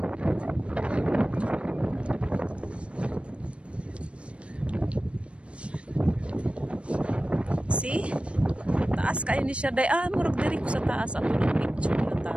See? Taas kayo ni siya day. Murag diri ko sa taas. Ato ng picture na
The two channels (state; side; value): late; left; 0.060 ms